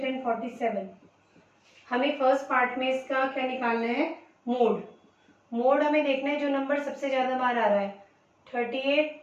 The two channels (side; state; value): both; identical; correlation 1.00